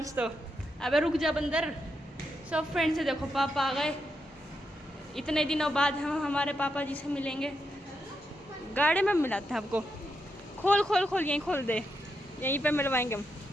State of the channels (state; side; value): normal; both; correlation 0.84